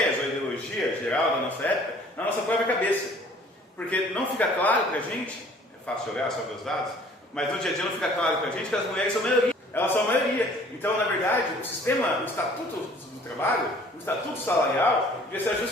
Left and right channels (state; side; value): normal; both; correlation 0.54